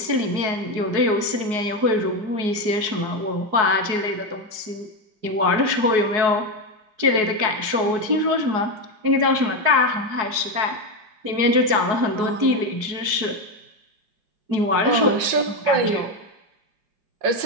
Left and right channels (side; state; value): left; late; 4.7 ms